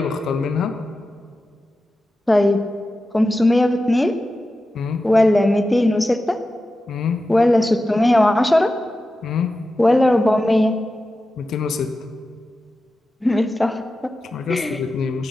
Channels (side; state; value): both; normal; correlation 0.93